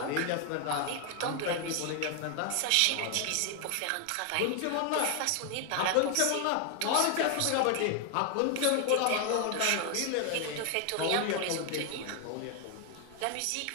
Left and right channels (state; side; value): different; both; correlation 0.00